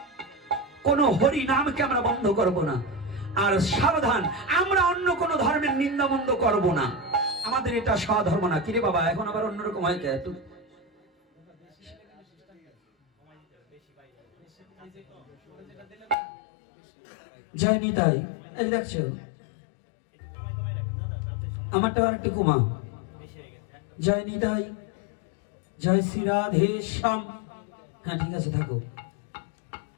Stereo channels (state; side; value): drops out; right; at 16.2 s